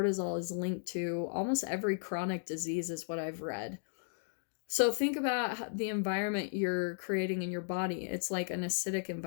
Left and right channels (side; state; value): right; silent; digital silence